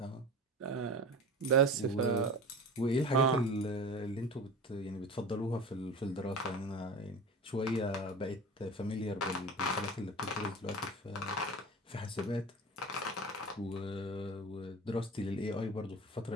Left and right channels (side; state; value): both; normal; correlation 0.33